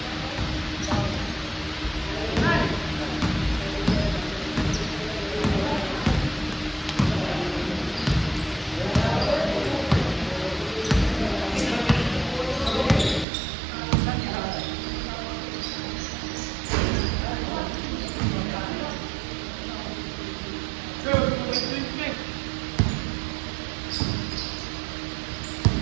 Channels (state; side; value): drops out; left; at 13.2 s